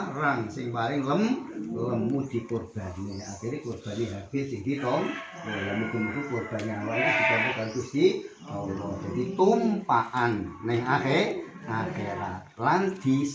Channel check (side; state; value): both; identical; correlation 1.00